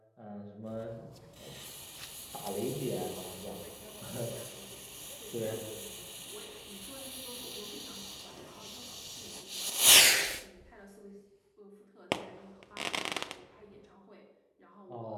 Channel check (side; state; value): both; identical; correlation 1.00